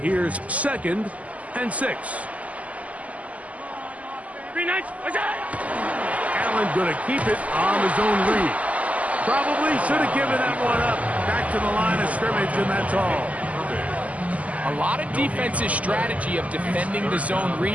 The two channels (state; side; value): late; left; 0.071 ms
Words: here's 2nd and 6. Allen going to keep it on his own read. Probably should have given that one up. Back to the line of scrimmage, and that's all. A lot of defense's strategy of defending the zone